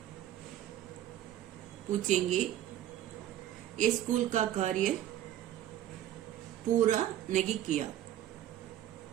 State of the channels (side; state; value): left; quieter; 12.2 dB